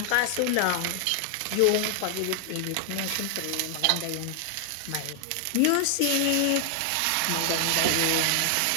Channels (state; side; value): different; both; correlation 0.00